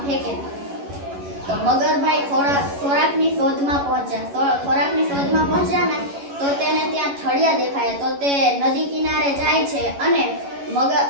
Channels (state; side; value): late; left; 11 ms